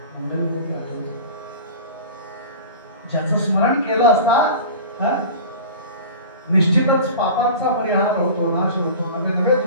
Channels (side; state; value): both; inverted; correlation -0.36